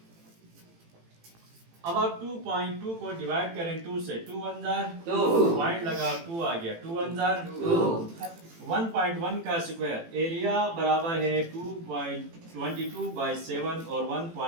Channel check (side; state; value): left; late; 18 ms